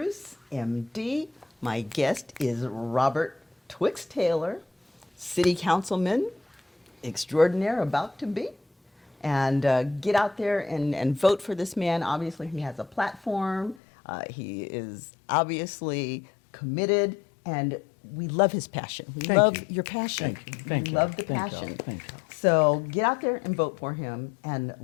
MD. My guest is Robert Twixx Taylor, City Councilman extraordinaire about to be. And get out there and vote for this man. Obviously, he has a platform. He is obviously committed, and we love his passion. We love your passion. Thank we you. love the Thank y'all. passion. Thank y'all. So get out there and vote for him, and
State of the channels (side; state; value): right; drops out; at 13.8 s